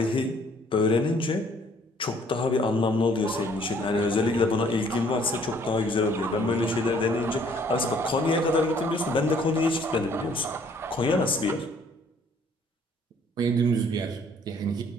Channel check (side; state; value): both; normal; correlation 0.60